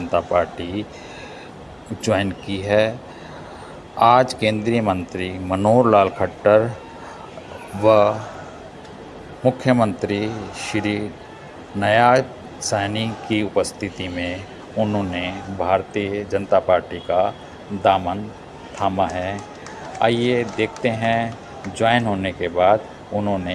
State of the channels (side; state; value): both; identical; correlation 1.00